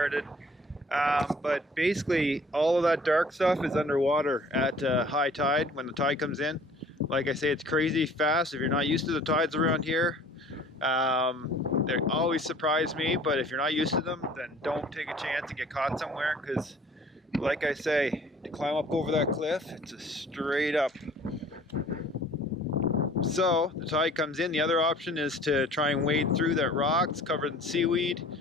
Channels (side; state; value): both; normal; correlation 0.51